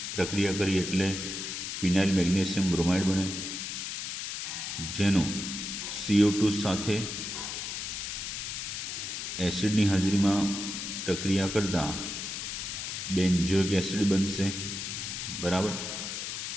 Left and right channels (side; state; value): left; noise; hiss, 5 dB below the sound